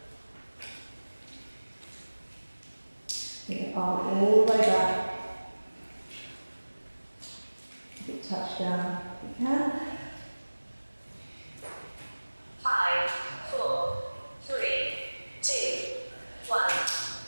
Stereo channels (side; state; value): both; inverted; correlation -1.00